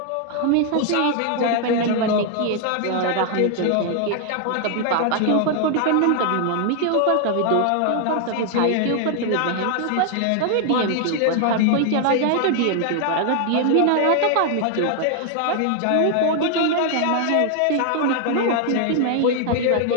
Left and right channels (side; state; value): both; different; correlation 0.00